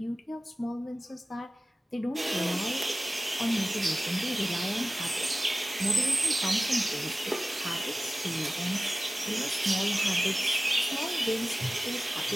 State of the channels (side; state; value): both; normal; correlation 0.96